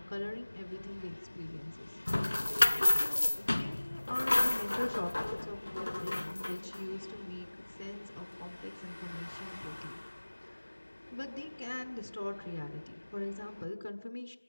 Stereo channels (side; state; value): both; inverted; correlation -1.00